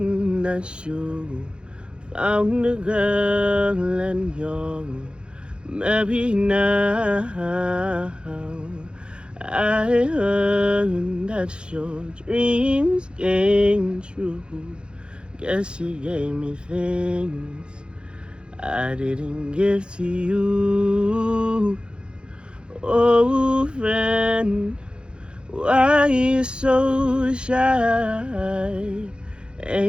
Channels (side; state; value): left; late; 0.054 ms